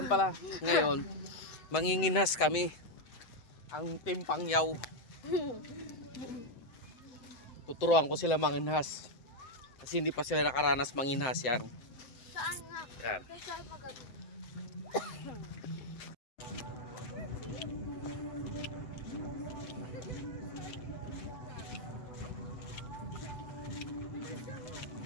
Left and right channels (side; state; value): right; late; 7.8 ms